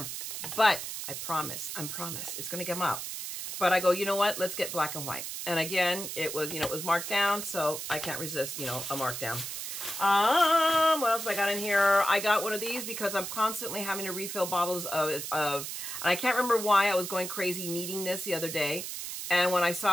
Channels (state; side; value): noise; right; hiss, 6 dB below the sound